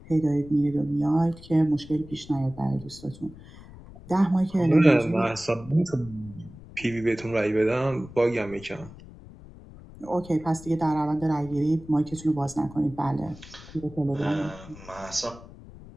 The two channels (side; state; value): left; noise; rumble, 18 dB below the sound